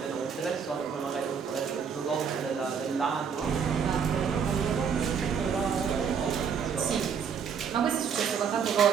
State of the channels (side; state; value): left; quieter; 6.8 dB